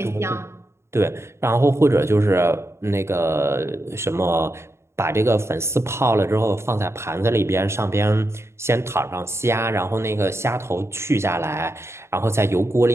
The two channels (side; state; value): left; late; 0.13 ms